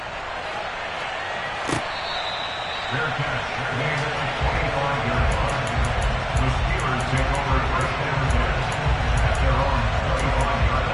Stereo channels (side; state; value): both; identical; correlation 1.00